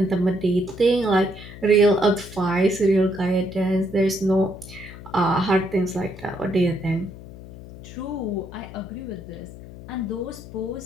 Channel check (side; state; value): left; noise; hum, 15 dB below the sound